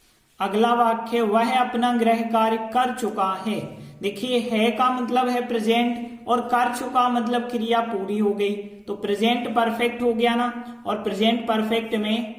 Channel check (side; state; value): both; identical; correlation 1.00